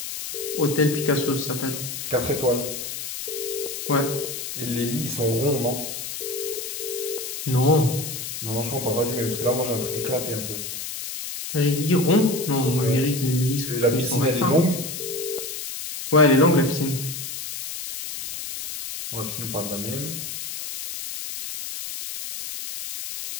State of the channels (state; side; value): noise; left; hiss, 7 dB below the sound